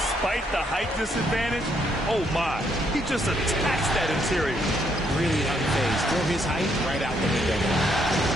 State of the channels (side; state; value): both; normal; correlation 0.73